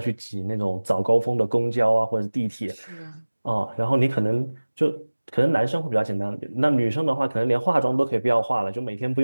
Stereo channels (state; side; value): inverted; both; correlation -1.00